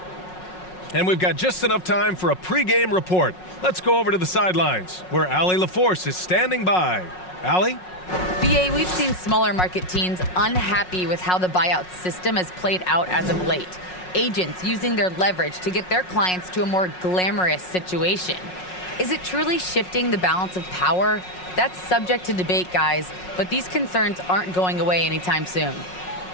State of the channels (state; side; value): late; right; 5.5 ms